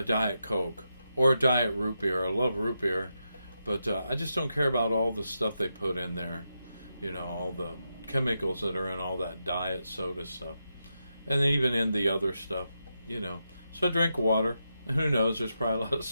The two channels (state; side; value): inverted; both; correlation -0.87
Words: Diet Coke or a Diet Root Beer. I love root beer, but I just don't care about all the stuff they put in there. You know, all the chemicals that are in all that diet soda stuff. And even in the other stuff, you know. So I drink water. Who knows, there's probably a lot of